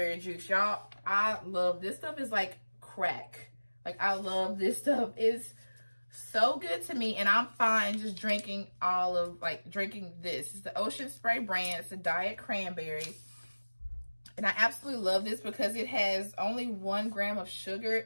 juice. Y'all, I love this stuff. Is like crack. Like, I love this stuff. It's so good to me. And I'm fine just drinking drinking this. It's the Ocean Spray brand. It's a diet cranberry. And I absolutely love this because it has only 1 gram of sugar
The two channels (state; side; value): inverted; both; correlation -1.00